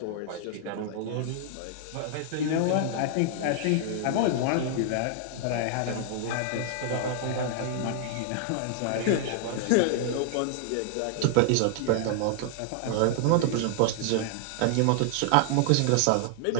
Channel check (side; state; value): both; different; correlation -0.01